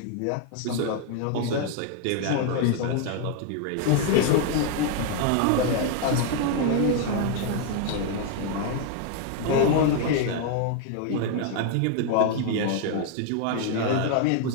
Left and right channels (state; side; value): different; both; correlation 0.00